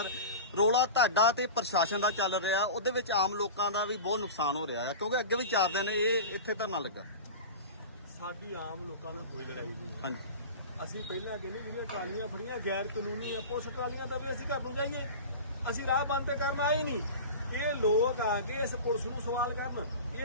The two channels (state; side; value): inverted; both; correlation -0.32